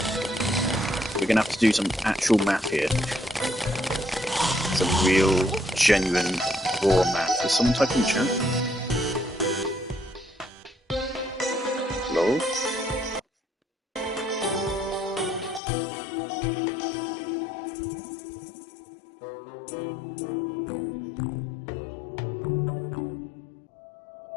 We're gonna have to do some actual math here. Some real, genuine, raw math. Is someone typing in the chat? Hello?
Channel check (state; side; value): drops out; right; at 15.6 s